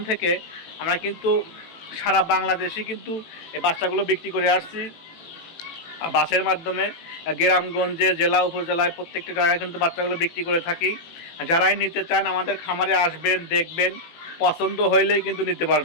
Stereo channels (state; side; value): late; right; 18 ms